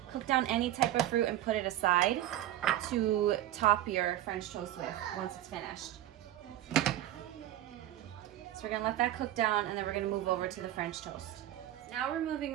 down any type of fruit and put it aside to top your French toast with once it's finished. So we're gonna let that cook down, and then we're gonna move over to the French toast. Now we're moving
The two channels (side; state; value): left; quieter; 13.3 dB